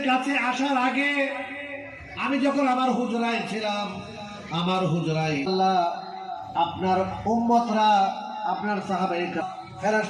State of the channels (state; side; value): identical; both; correlation 1.00